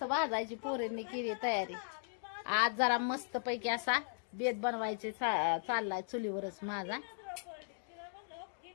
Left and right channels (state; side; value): silent; right; digital silence